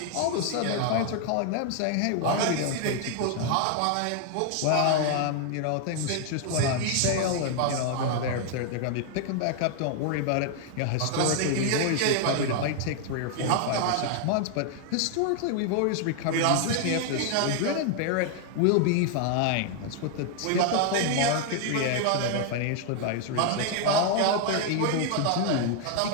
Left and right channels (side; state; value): both; different; correlation 0.00